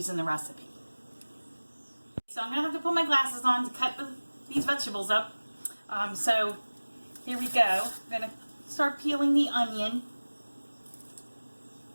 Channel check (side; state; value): both; inverted; correlation -1.00